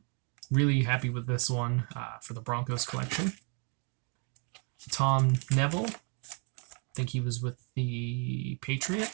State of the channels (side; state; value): left; quieter; 37.6 dB